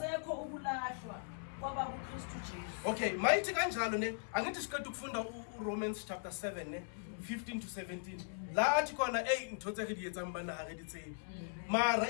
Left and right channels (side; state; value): right; silent; 52 dB below the other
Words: ukulahlwa kwaba kuKristu Jesu. Okay, mayithi kanjalo ne angithi siqeda ukufunda uRomans chapter 7 ne 15 to 17. La athi khona ntotse ke di etsa mbana ha re di tsebe. Mara